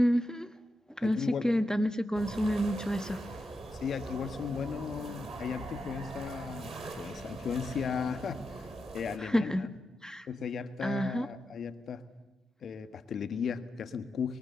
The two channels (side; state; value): both; normal; correlation 0.87